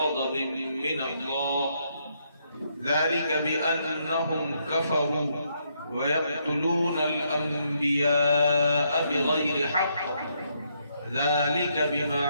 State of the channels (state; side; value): inverted; both; correlation -0.75